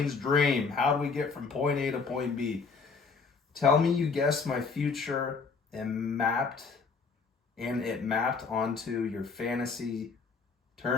dream. How do we get from point A to point B? Tell me you guessed my future and it mapped onto your fantasy.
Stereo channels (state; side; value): quieter; right; 4.9 dB